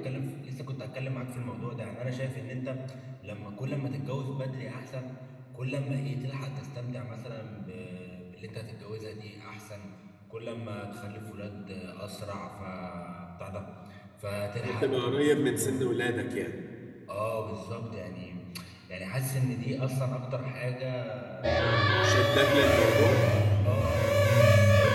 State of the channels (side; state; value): both; identical; correlation 1.00